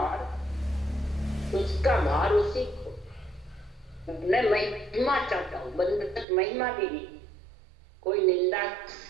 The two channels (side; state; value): left; drops out; at 6.2 s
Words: उसका भार उसी को। मैं महिमा चाहता हूँ, बंधक महिमा भी नहीं। कोई निंदा